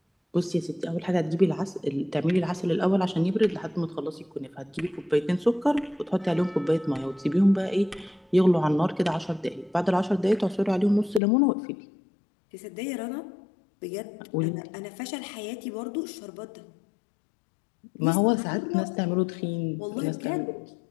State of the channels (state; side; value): drops out; right; at 11.2 s